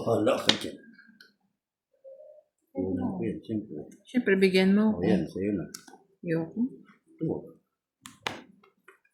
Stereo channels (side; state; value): both; identical; correlation 1.00